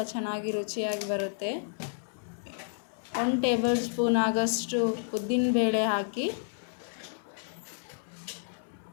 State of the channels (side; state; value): right; silent; 57 dB below the other